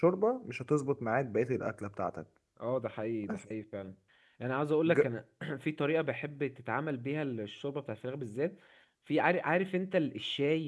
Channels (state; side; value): identical; both; correlation 1.00